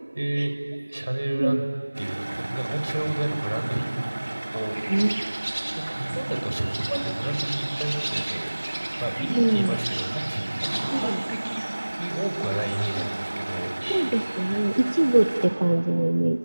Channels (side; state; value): both; inverted; correlation -1.00